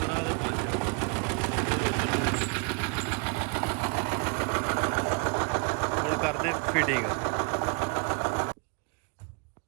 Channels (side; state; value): left; quieter; 34.5 dB